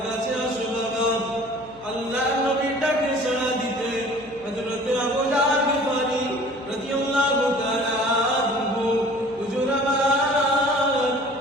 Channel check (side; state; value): left; noise; hum, 23 dB below the sound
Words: কাছে আসো বাবা। আল্লাহর নবী ডাকে সাড়া দিতে হযরত আবু জাহল গিফারি রাদিয়াল্লাহু তাআলা আনহু হুজুর আমার